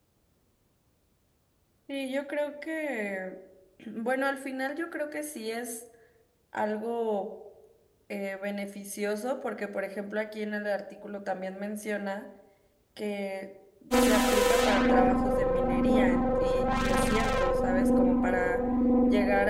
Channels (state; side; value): identical; both; correlation 1.00